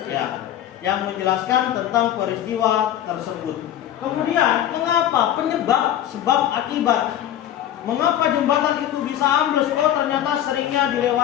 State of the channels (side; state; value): right; quieter; 11.5 dB